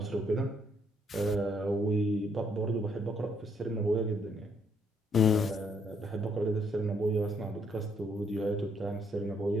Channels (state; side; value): normal; both; correlation 0.71